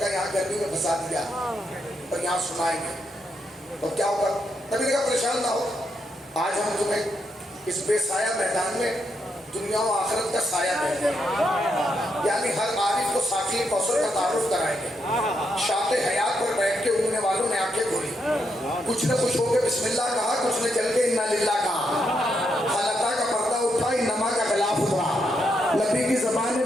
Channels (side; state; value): both; normal; correlation 0.80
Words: یہاں گرمی میں پھنسا دیا اور یہاں سنائیں گے تو کیا ہوگا. نبی نے کہا پریشان نہ ہو، آج ہم تمہیں اس بے سایہ میدان میں دنیا و آخرت کا سایہ دیں گے. یعنی ہر عارف کو ساقی کوثر کا تعارف کرائیں گے. شاط حیات پر بیٹھ کے اڑنے والوں نے آنکھیں کھولی، کچھ نے خوش ہو کے بسم اللہ کہا، کچھ نے چل کے انا للہ کہا. حالتہ کا پردہ اٹھا، انما کا غلاف اترا، نبی کی زبان